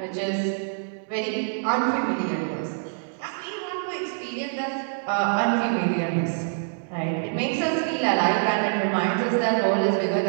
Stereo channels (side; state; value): left; silent; digital silence